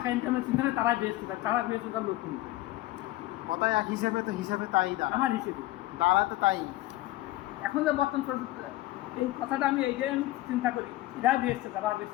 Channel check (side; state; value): right; quieter; 17.2 dB